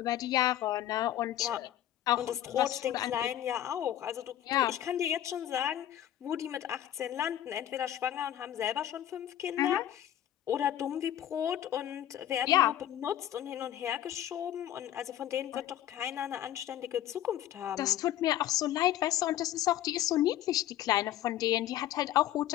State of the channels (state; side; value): quieter; right; 12.1 dB